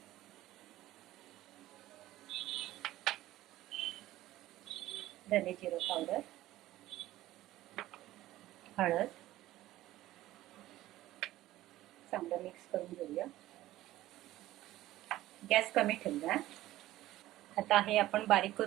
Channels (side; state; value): left; quieter; 15.5 dB